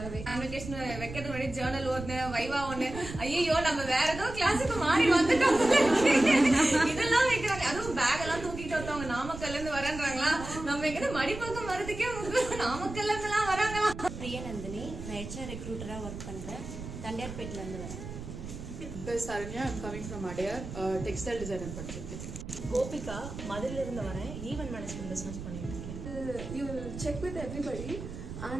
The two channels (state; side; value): noise; right; rumble, 10 dB below the sound